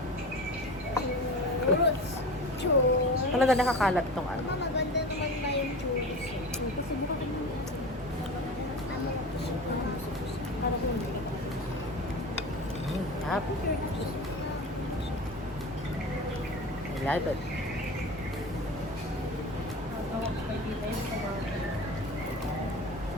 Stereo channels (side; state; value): both; normal; correlation 0.32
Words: Churros. Churros. Talaga nakakalat tong ano. Maganda naman na yung churros. Kasi buka Yap. I love it.